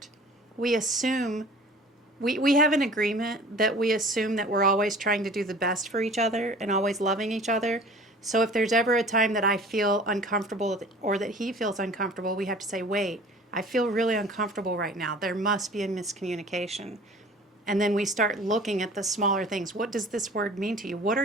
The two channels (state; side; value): normal; both; correlation 0.46